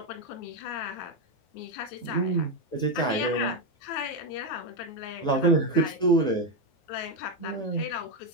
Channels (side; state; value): right; late; 9.3 ms